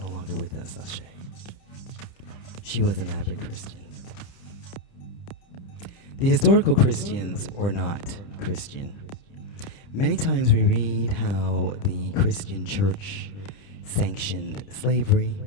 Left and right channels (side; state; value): right; late; 29 ms